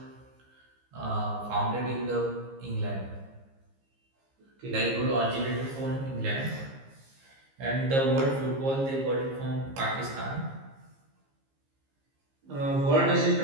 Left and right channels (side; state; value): left; late; 15 ms